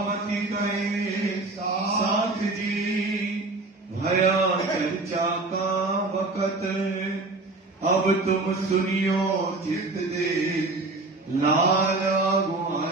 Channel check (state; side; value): quieter; left; 3.2 dB